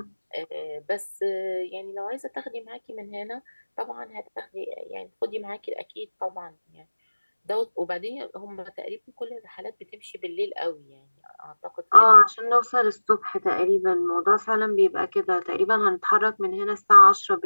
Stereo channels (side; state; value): both; inverted; correlation -1.00